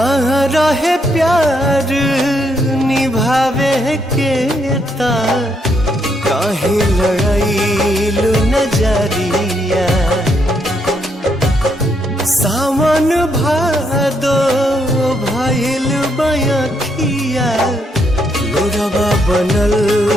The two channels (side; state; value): both; normal; correlation 0.75